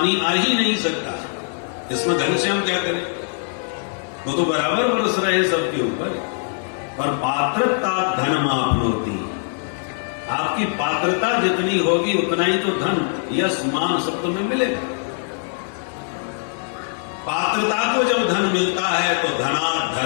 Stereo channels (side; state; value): right; silent; digital silence